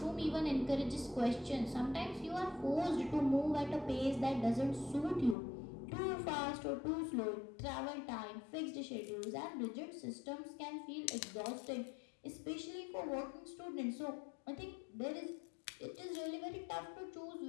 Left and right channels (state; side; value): drops out; right; at 5.4 s